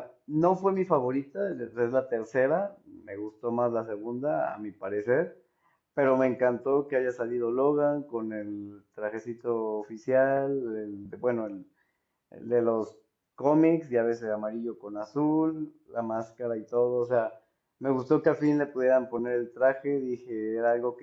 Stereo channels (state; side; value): identical; both; correlation 1.00